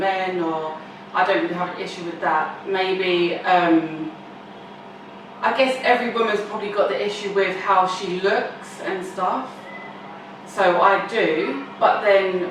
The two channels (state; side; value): identical; both; correlation 1.00